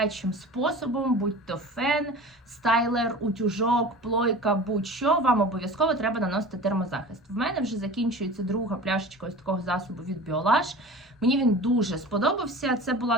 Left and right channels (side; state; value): both; normal; correlation 0.37